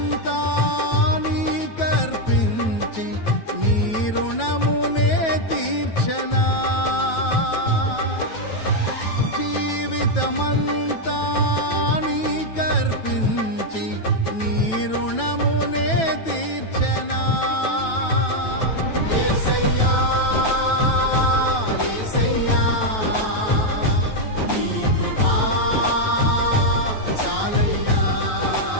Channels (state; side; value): late; right; 9.2 ms